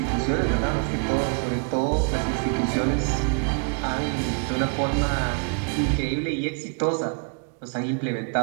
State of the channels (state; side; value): quieter; left; 39.9 dB